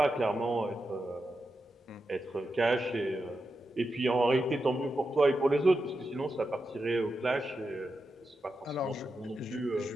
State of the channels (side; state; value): both; normal; correlation 0.88